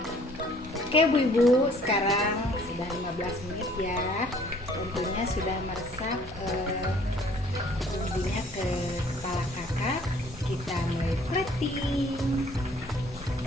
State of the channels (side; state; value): both; normal; correlation 0.57